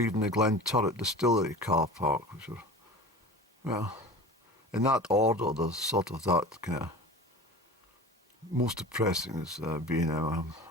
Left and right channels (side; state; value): both; normal; correlation 0.36